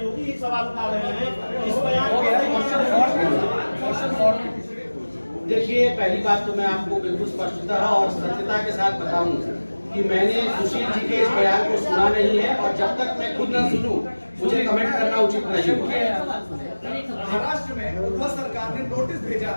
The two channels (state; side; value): inverted; both; correlation -1.00